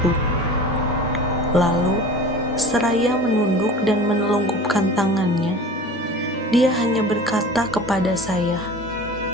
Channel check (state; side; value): normal; both; correlation 0.38